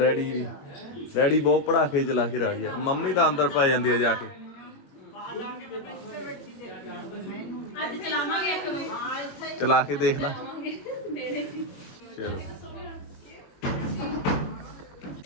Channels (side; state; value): right; late; 22 ms